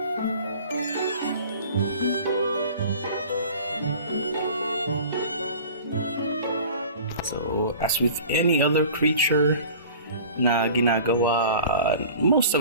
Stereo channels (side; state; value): both; inverted; correlation -0.43